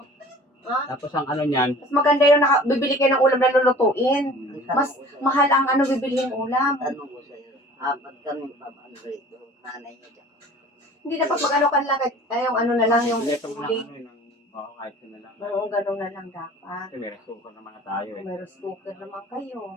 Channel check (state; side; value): normal; both; correlation 0.45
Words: Ha? Tapos ang ano niyan, Mas maganda yung bibili kayo ng ulam na lulutuin. Ang Mas tanong ko sa'yo. mahal ang bibilihin ulam. Tanong ko sa'yo. Apat kami pamandrito. Nanay niya dyan. Hindi dapat mag-ano ka lang. Yung ano na lang, yung leto mo lang huli. ano yun. Kahit yun na lang. Oo, ganun na lang dapat. Kasi may resuko naman na tayo eh. May cooker naman kayo.